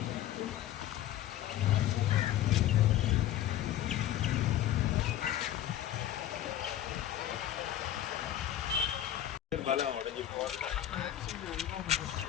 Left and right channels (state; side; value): quieter; right; 12.0 dB